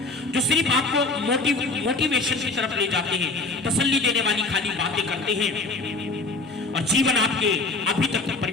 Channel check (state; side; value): quieter; right; 3.4 dB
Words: जो सिर्फ आपको मोटिवेशन की तरफ ले जाते हैं, तसल्ली देने वाली खाली बातें करते हैं और जीवन आपके अभी तक